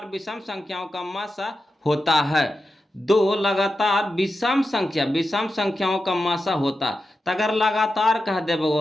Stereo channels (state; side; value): normal; both; correlation 0.90